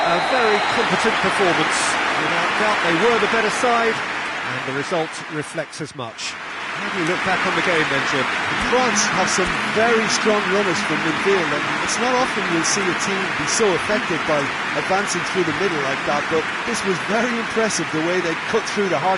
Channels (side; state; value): both; identical; correlation 1.00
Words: a very competent performance. Without doubt, they were the better side, and the result reflects as much. How do you look back on the game then, Jim? France have some very strong runners from midfield, and it's not often you'll see a team be so effective by advancing through the middle like that, but this was very impressive, the way they cut through the